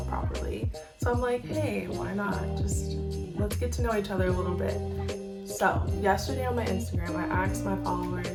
properly. So I'm like, hey, why not? Just let's get to know each other a little bit. So yesterday on my Instagram, I asked my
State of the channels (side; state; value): both; identical; correlation 1.00